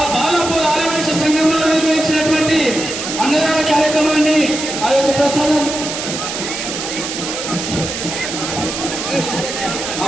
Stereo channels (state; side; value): noise; right; hiss, 5 dB below the sound